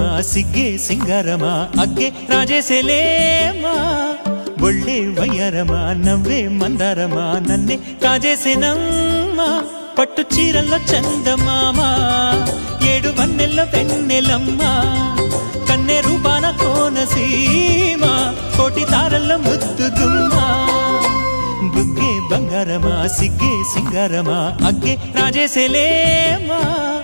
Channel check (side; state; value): both; inverted; correlation -1.00